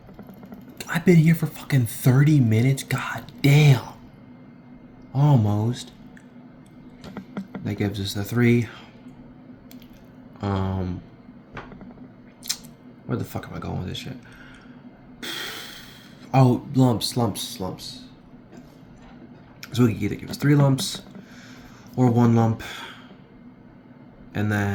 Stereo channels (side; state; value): both; identical; correlation 1.00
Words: I've been here for fucking 30 minutes. God damn. Almost. That gives us the 3. Where the fuck am I going with this shit? Oh, lumps. So we can either give us 3 lumps or 1 lump. And